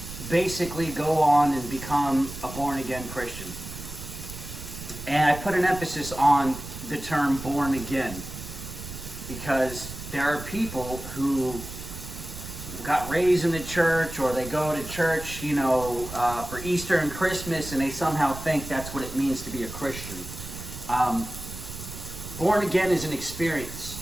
basically go on and become a born-again Christian? And I put an emphasis on the term born again, because there are people who got raised in the church, or they go to church, you know, for Easter and Christmas, and they somehow think that's what it means to be a Christian. Born again is an experience.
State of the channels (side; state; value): right; noise; rumble, 11 dB below the sound